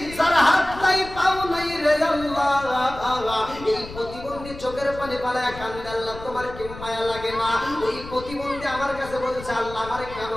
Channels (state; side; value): noise; left; rumble, 14 dB below the sound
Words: যার হাত নাই পাও নাই রে আল্লাহ, এই প্রতিবন্ধী চোখের পানি পালায়া কান্দে আল্লাহ তোমার কি মায়া লাগে না? ওই প্রতিবন্ধী আমার কাছে বলছে আল্লাহ আমারে কেন